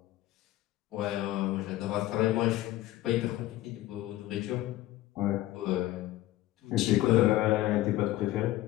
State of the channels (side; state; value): right; quieter; 15.5 dB